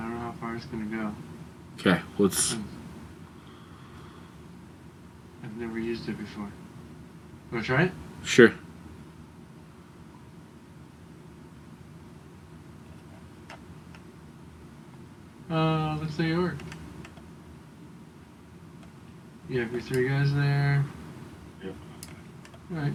don't know how far it's going to go. Okay, let's... I've never used it before. Want to try it? Sure. Looks like it worked. You have your 3 guys there. Yep. Alright,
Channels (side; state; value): both; identical; correlation 1.00